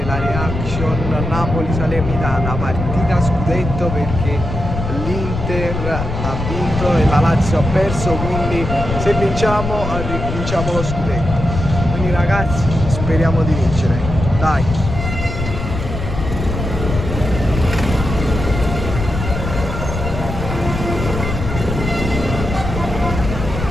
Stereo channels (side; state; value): left; noise; rumble, 5 dB below the sound